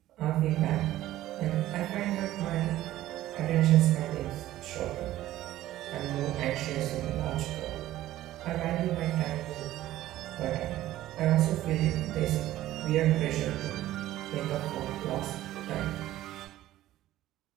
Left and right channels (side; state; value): left; quieter; 14.6 dB